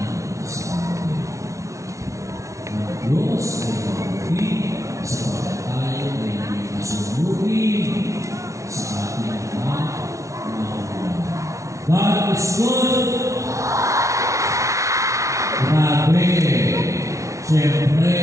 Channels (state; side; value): late; left; 0.15 ms